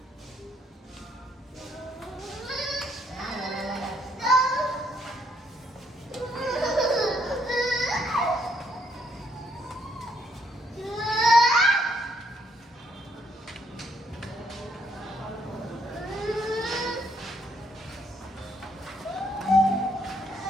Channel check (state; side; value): normal; both; correlation 0.71